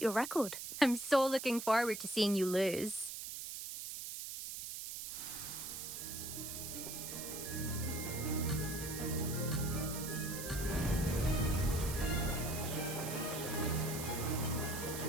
your record. I'm so looking forward to seeing you lose.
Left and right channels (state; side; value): noise; right; hiss, 7 dB below the sound